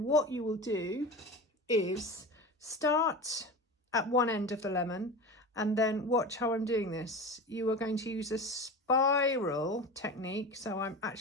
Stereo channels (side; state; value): both; normal; correlation 0.30